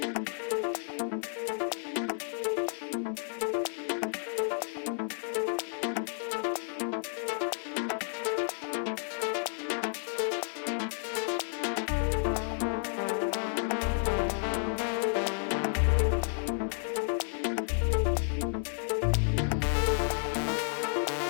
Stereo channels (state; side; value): silent; right; digital silence